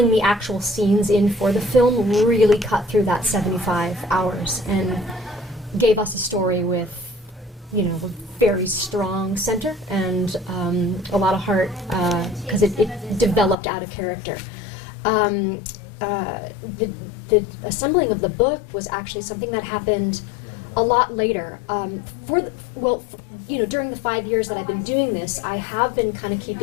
the actual scenes in for the film really cut through that 75 hours and gave us a story with, a very strong center and a lot of heart, because it developed out of character. The assembling of the book was actually something that happened a lot later. During the 5 years that I've been doing this, I have been kind of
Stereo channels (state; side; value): drops out; right; at 13.6 s